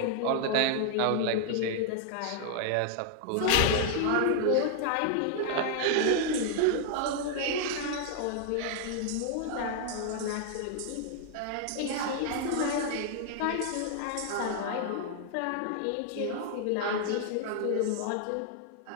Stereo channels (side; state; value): both; different; correlation 0.00